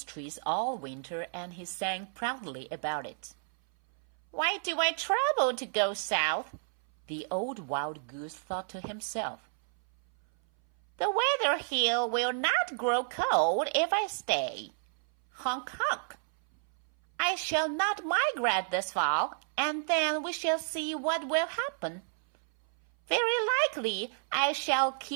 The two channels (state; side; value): silent; left; 57 dB below the other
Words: trees all winter, and he sang proudly about it. "Why do I travel to go south?" the old wild goose thought to himself. "The weather here will not grow cold if I stay. Honk, honk. I shall not migrate this fall, and then we shall see what will happen. Very likely I shall